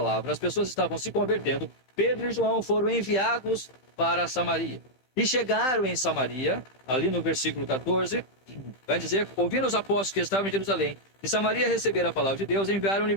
as pessoas estavam se convertendo, Pedro e João foram enviados para Samaria. E chegaram em Samaria, ali no versículo 14, vai dizer, ouvindo os apóstolos que estavam em Jerusalém, e Samaria receberam a palavra de Deus, enviaram-lhe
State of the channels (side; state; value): right; late; 15 ms